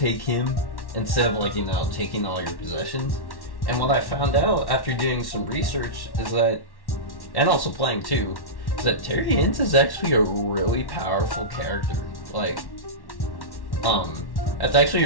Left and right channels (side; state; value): right; late; 1.1 ms